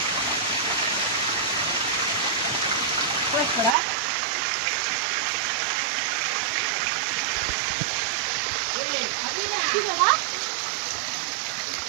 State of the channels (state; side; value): drops out; left; at 3.8 s